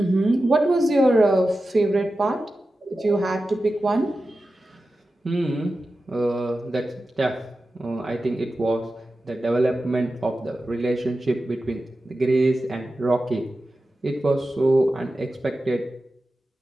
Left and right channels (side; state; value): both; normal; correlation 0.93